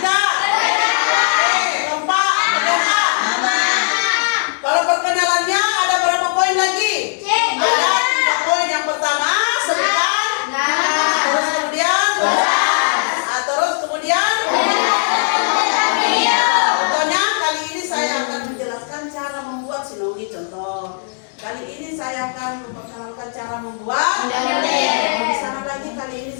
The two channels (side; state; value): right; silent; digital silence